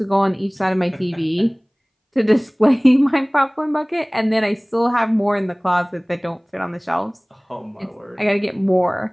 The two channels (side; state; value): both; identical; correlation 1.00